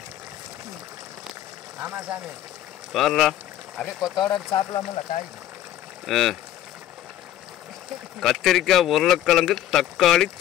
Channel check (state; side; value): quieter; right; 12.5 dB